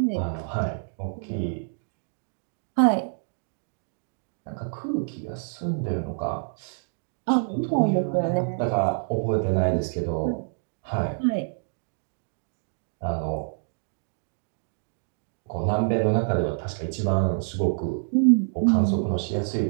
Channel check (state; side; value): silent; left; digital silence